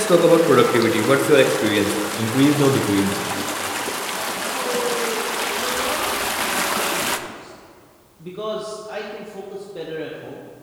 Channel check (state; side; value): identical; both; correlation 1.00